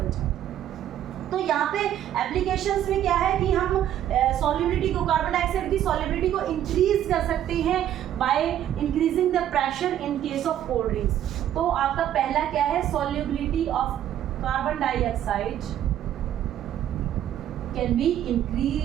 जाती है। तो यहाँ पे एप्लीकेशंस में क्या है कि हम सॉल्युबिलिटी को, कार्बन डाइऑक्साइड की सॉल्युबिलिटी को इंक्रीज कर सकते हैं by increasing the pressure in case of cold drinks. तो आपका पहला क्या है, solubility of carbon dioxide can be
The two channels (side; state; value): left; quieter; 11.2 dB